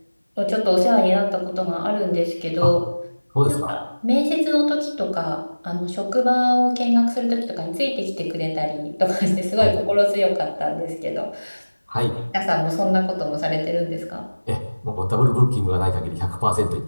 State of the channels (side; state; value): both; inverted; correlation -1.00